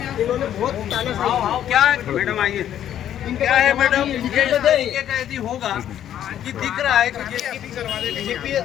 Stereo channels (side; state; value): right; quieter; 10.8 dB